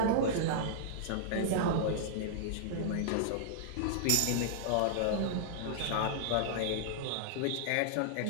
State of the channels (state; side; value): different; both; correlation -0.02